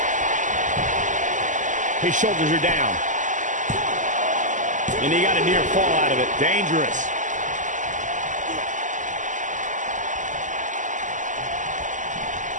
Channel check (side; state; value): left; late; 0.37 ms